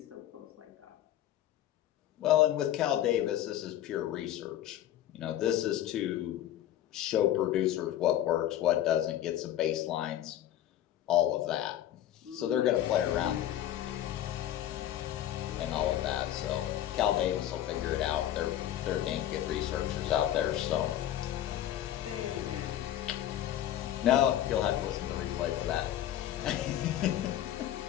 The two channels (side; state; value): right; quieter; 12.2 dB